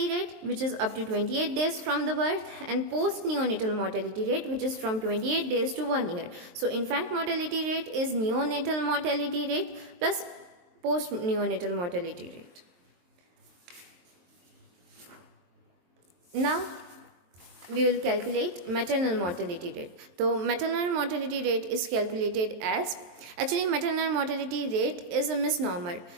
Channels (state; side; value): late; left; 23 ms